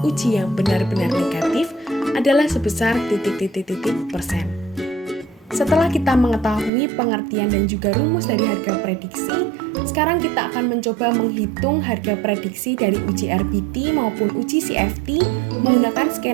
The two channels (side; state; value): left; drops out; at 6.7 s